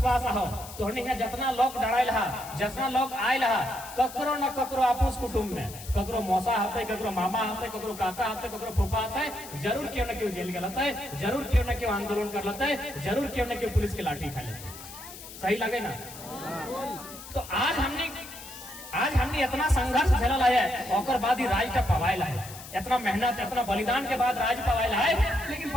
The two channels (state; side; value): noise; left; hiss, 14 dB below the sound